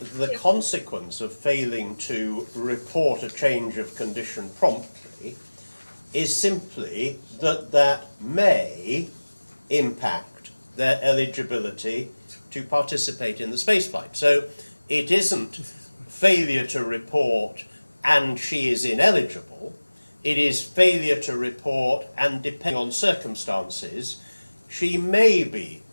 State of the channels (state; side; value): inverted; both; correlation -1.00